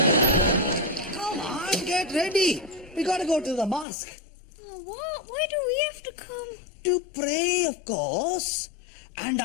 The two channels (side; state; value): right; drops out; at 3.9 s